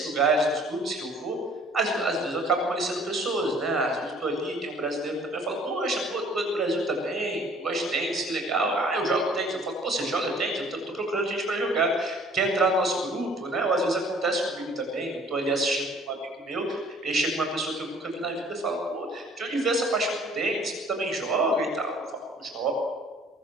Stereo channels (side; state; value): both; normal; correlation 0.55